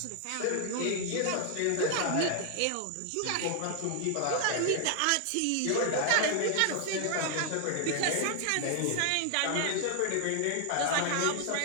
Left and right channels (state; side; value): different; both; correlation 0.00